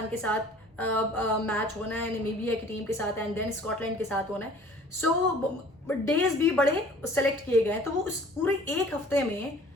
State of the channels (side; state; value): both; normal; correlation 0.50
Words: के साथ मैच होना है, नामीबिया की टीम के साथ, एंड देन स्कॉटलैंड के साथ होना है। सो डेज भी बड़े सेलेक्ट किए गए हैं। तो वो उस पूरे एक हफ्ते में